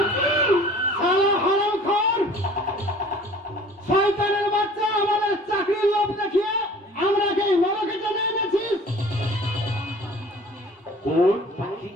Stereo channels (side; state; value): both; normal; correlation 0.48